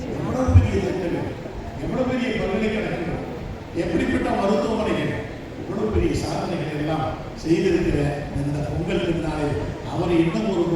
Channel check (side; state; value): both; identical; correlation 1.00